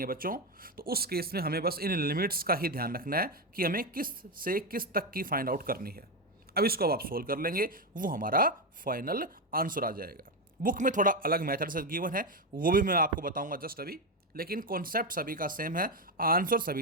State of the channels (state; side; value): normal; both; correlation 0.10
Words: है बच्चों, तो उस केस में हमें बस इन लिमिट्स का ही ध्यान रखना है कि हमें किस से किस तक की फाइंड आउट करनी है। अब इसको अब आप सोल्व कर लेंगे, वो हमारा फाइनल आंसर आ जाएगा। बुक में थोड़ा अलग मेथड से गिवन है, वो भी मैं आपको बताऊंगा जस्ट अभी, लेकिन कॉन्सेप्ट सभी का सेम है, आंसर